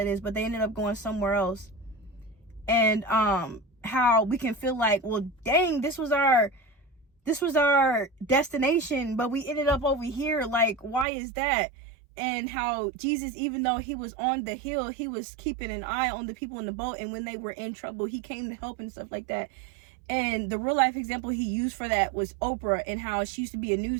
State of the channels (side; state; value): left; drops out; at 11.1 s